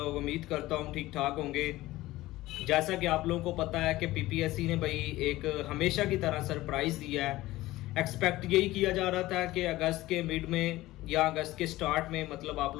उम्मीद करता हूँ ठीक ठाक होंगे। जैसा कि आप लोगों को पता है कि पीपीएससी ने भाई एक हमेशा की तरह सरप्राइज़ दिया है। एक्सपेक्ट यही किया जा रहा था कि अगस्त के मिड में या अगस्त के स्टार्ट में मतलब आप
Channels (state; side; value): quieter; right; 17.4 dB